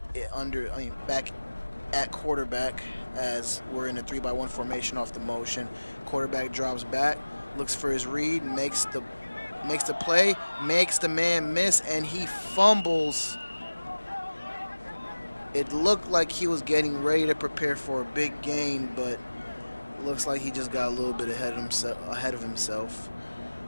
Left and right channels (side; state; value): both; inverted; correlation -1.00